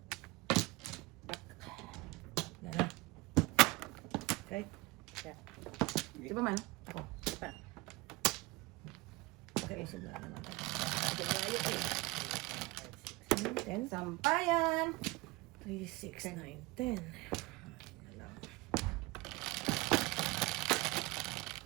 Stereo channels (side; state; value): left; quieter; 22.6 dB